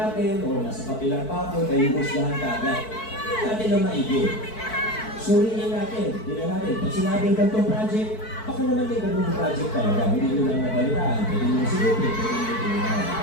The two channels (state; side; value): late; right; 4.6 ms